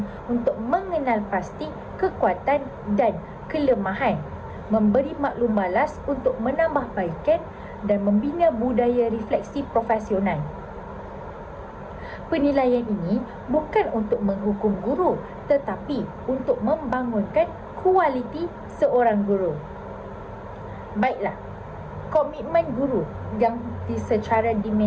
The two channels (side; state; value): both; identical; correlation 1.00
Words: untuk mengenal pasti kekuatan dan kelemahan, memberi maklum balas untuk menambahbaikan dan membina budaya refleksi profesional. Penilaian ini bukan untuk menghukum guru, tetapi untuk membangunkan kualiti seorang guru. Baiklah, komitmen guru yang secara